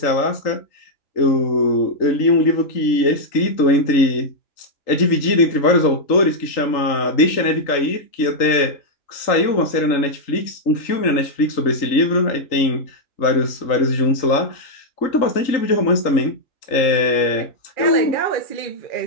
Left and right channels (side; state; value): right; late; 3.8 ms